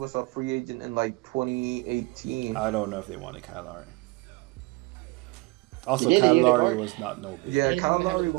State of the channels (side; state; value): left; quieter; 24.3 dB